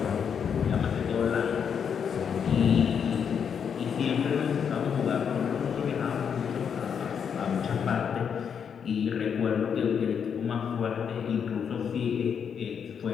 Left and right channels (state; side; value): quieter; right; 7.3 dB